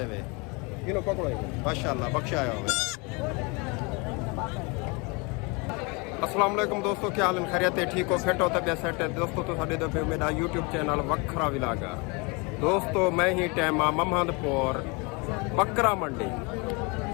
है किनो पकड़ो माशाल्लाह बख्शाया हो। अस्सलाम वालेकुम दोस्तों क्या हाल खैरियत है ठीक हो फिट हो तबियत सेट है दोस्तों तो साढ़े दफे मेरा यूट्यूब चैनल वखरा विलागा दोस्तों मैं ही टाइम आ महमदपुर बकरा मंडी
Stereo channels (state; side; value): quieter; right; 29.5 dB